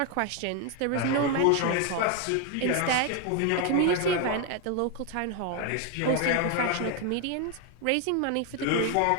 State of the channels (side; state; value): both; different; correlation 0.01